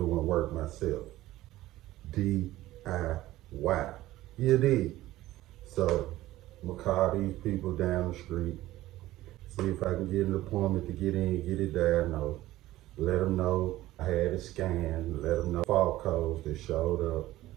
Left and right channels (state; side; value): quieter; left; 16.0 dB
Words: work myself. DIY. You did. So I'm going to call these people down the street, see if I can get an appointment to get in, get it diagnosed. Let them know I had a scan, let them know fault codes that showed up